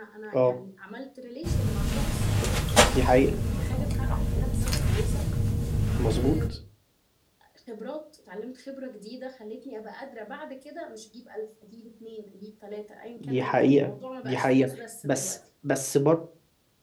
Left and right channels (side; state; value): both; identical; correlation 1.00